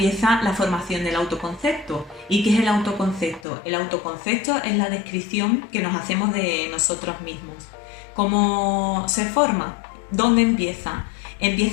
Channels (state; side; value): drops out; right; at 3.5 s